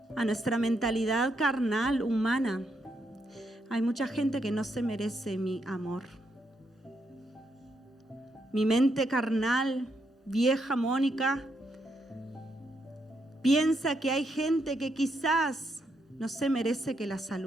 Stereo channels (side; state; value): both; normal; correlation 0.79